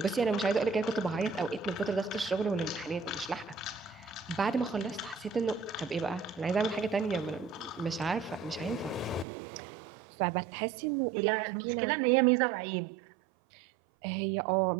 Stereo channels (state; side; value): drops out; left; at 9.2 s